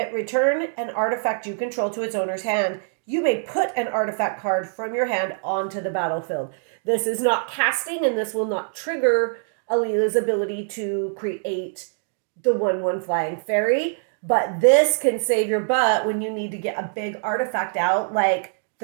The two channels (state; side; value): silent; left; digital silence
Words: return an artifact you control to its owner's hand. You may put an artifact card from your hand onto the battlefield. This is not casting, and this will not trigger Alela's ability to create the 1/1 flying fairy. But this can save your butt when you need to get a big artifact out, like